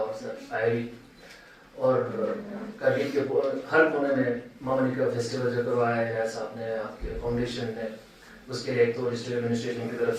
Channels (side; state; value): both; identical; correlation 1.00